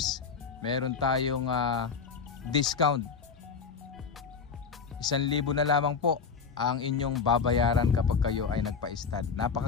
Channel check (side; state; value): right; quieter; 5.7 dB